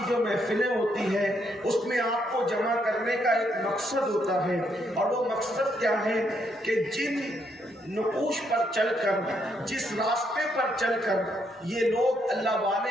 جو محفلیں ہوتی ہے، اس میں آپ کو جمع کرنے کا ایک مقصد ہوتا ہے، اور وہ مقصد کیا ہے کہ جن نقوش پر چل کر، جس راستے پر چل کر یہ لوگ اللہ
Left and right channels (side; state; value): both; normal; correlation 0.75